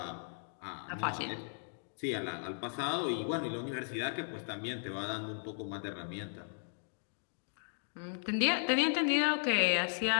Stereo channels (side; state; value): right; silent; digital silence